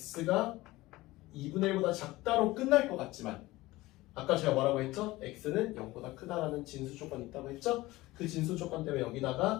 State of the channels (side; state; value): right; quieter; 18.9 dB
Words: 2분의 1보다 작다로 끝날 것 같지만 아까 제가 뭐라고 했죠? x는 0보다 크다라는 진수 조건이 있다고 했죠? 그 진수 조건 때문에